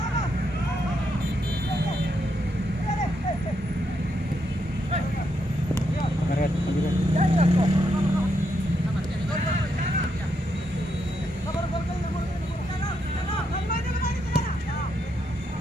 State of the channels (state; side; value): normal; both; correlation 0.80